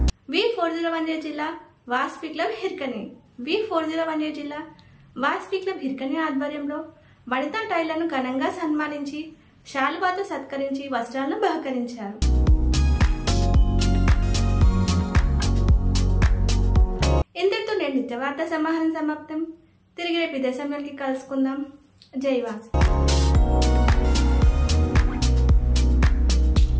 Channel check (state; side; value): identical; both; correlation 1.00